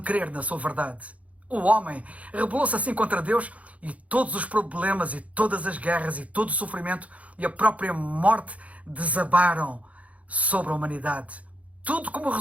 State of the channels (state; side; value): late; left; 0.067 ms